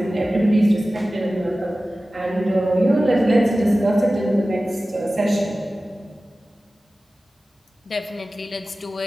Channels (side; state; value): both; normal; correlation 0.96